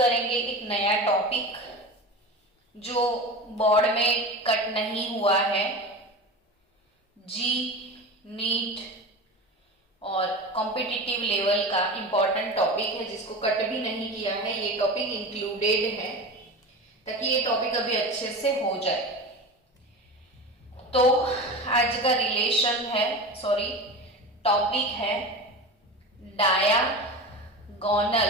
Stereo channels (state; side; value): normal; both; correlation 0.29